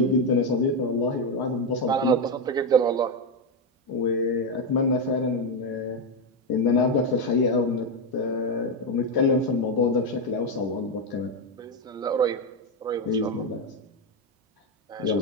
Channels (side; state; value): both; normal; correlation 0.07